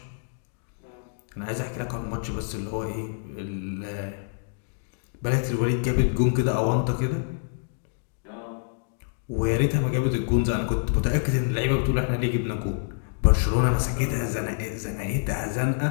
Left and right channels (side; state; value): right; silent; digital silence